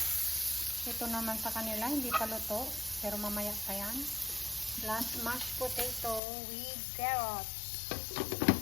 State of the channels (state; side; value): drops out; right; at 6.2 s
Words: Ito naman sa kanila, hindi pa luto. Pero mamaya pa yan. Plus mashed potato with carrots.